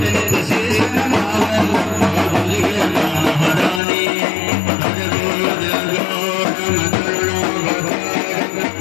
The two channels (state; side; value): drops out; right; at 3.8 s